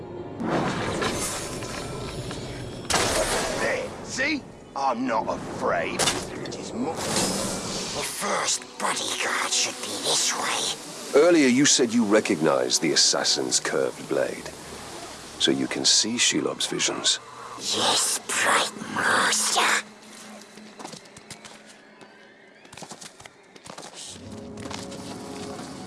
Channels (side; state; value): both; identical; correlation 1.00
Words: There, see? I'm not afraid. It is more... The first bodyguard should be this way. Earlier you said you recognized the assassin's curved blade. So you can see Shelob's visions. Yes, bright master.